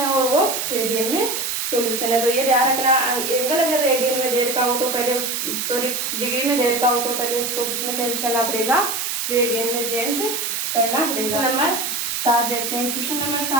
और वो रेडियन में सॉल्यूशन है। तो ये ध्यान रखना एंगल अगर रेडियन में दे रखा हो तो पहले डिग्री में दे रखा हो तो पहले उसको किस में चेंज करना पड़ेगा रेडियन में चेंज करना पड़ेगा। नंबर 7 देखते हैं। क्वेश्चन नंबर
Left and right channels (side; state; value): right; noise; hiss, 2 dB below the sound